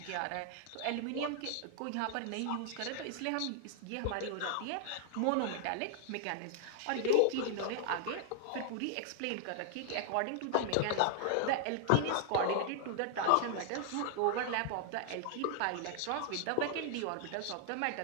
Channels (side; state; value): both; different; correlation -0.01